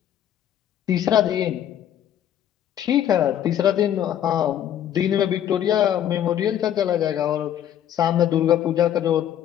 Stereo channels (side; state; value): right; quieter; 10.7 dB